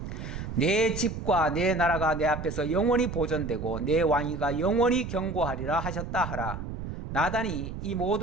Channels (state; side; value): noise; right; rumble, 7 dB below the sound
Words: 내 집과 내 나라가 내 앞에서 영원히 보존되고 내 왕위가 영원히 경고하리라 하셨다 하라. 나단이 이